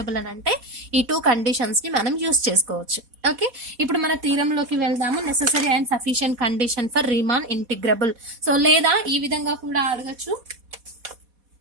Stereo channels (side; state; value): left; late; 4.2 ms